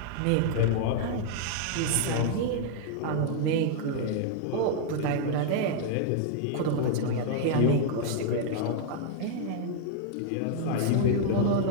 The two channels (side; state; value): both; different; correlation -0.01